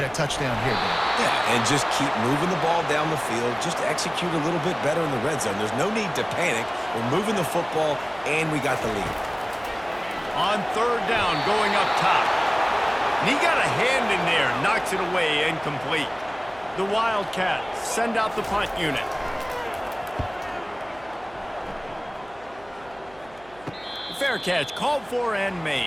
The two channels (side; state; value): right; noise; hum, 25 dB below the sound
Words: a touchdown here, Dan? Yeah, and just keep moving the ball down the field. Just execute a little bit better in the red zone. There's no need to panic. We're moving the football, and we got the lead. On 3rd down, going up top. And he got a hand in there, knocks it away, incomplete. The Wildcats send out the punt unit. Fair catch, called for and